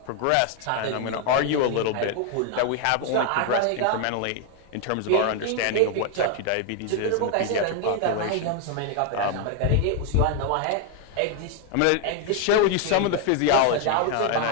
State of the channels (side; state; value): both; different; correlation 0.01